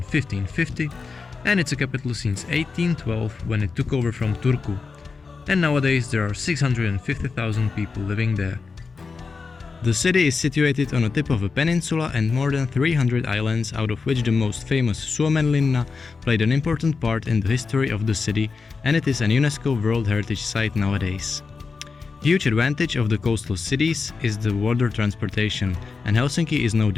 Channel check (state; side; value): quieter; right; 4.7 dB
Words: and it's a capital since 1812 when it took over from Turku. And nowadays there are 650,000 people living there. The city is situated on the tip of a peninsula and more than 300 islands, out of which the most famous Suomenlinna played an important part in the history of the city, and it is an UNESCO World Heritage Site nowadays. Huge advantage of the coastal cities is the water transportation, and Helsinki is no